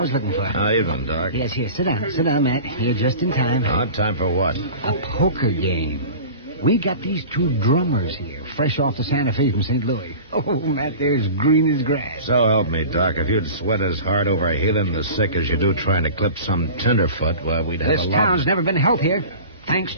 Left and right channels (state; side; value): inverted; both; correlation -0.37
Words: was looking for. How evening, Doc. Yes, here. Sit down. Sit down, Matt. You're just in time. Time for what? A poker game. We got these two drummers here, fresh off the Santa Fe from St. Louis. Oh, Matt, they're as green as grass. So help me, Doc. If you'd sweat as hard over healing the sick as you do trying to clip some tenderfoot, well, we'd have This a lot... town's never been healthier, thanks